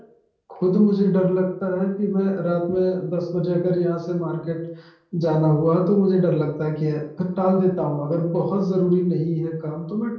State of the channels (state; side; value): identical; both; correlation 1.00